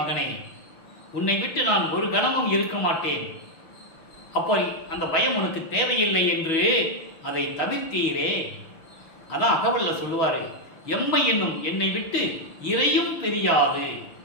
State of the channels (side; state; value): right; late; 6.3 ms